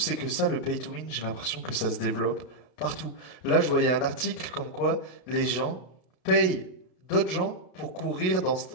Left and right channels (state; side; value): late; right; 32 ms